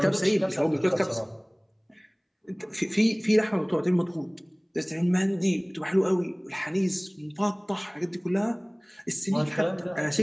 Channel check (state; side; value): identical; both; correlation 1.00